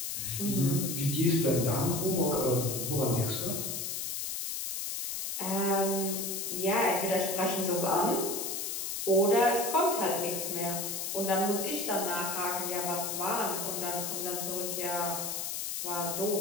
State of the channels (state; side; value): noise; left; hiss, 3 dB below the sound